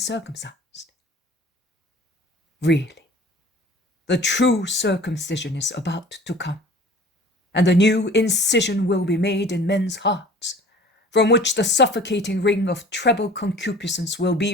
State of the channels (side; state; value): both; normal; correlation 0.46